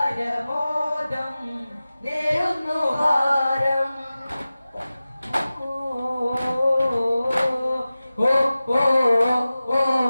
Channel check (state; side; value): inverted; both; correlation -0.96